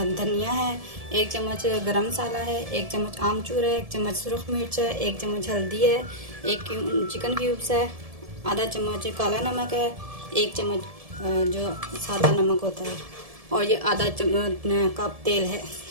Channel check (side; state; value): left; late; 1.7 ms